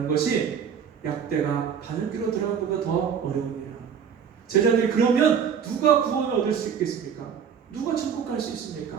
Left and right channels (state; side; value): quieter; left; 7.4 dB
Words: 것이 약대가 바늘귀로 들어가는 것보다 더 어려움이라. 제자들이 그러면 누가 구원을 얻을 수 있겠습니까? 누가 천국 갈 수